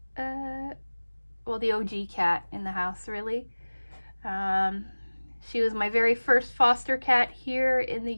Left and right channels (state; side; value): inverted; both; correlation -1.00